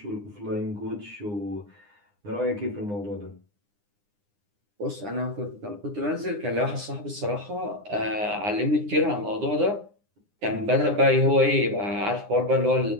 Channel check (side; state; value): left; late; 9.8 ms